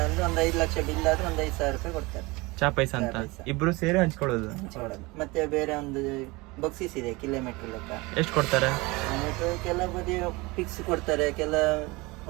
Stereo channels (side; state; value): left; quieter; 23.8 dB